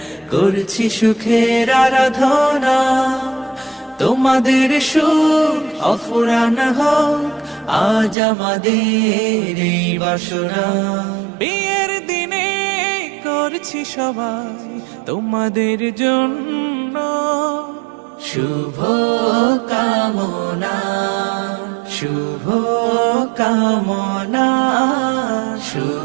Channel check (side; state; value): left; drops out; at 8.2 s